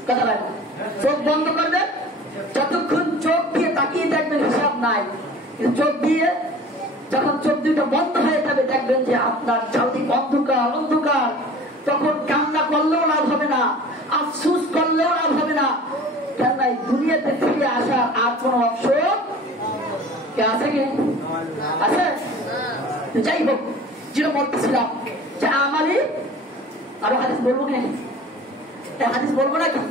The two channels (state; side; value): normal; both; correlation 0.43